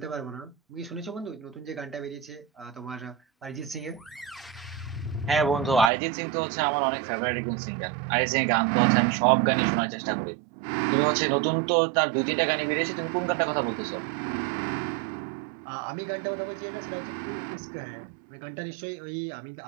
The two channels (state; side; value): drops out; left; at 5.9 s